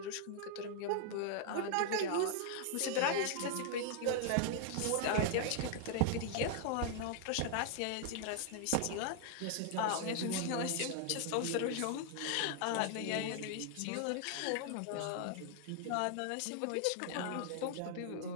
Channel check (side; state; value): both; different; correlation 0.00